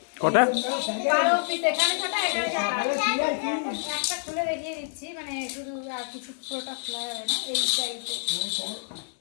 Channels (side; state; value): right; silent; 59 dB below the other